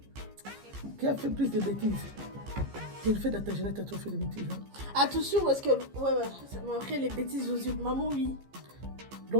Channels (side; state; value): left; late; 15 ms